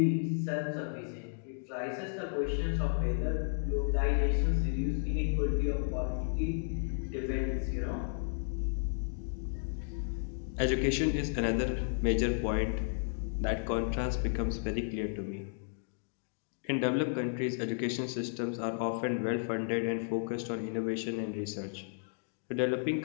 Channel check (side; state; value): right; silent; digital silence